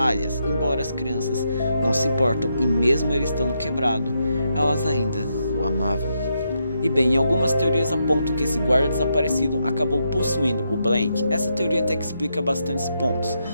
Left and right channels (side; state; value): both; inverted; correlation -0.81